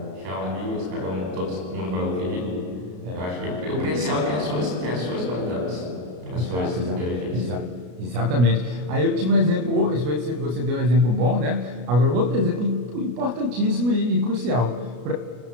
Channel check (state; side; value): late; left; 33 ms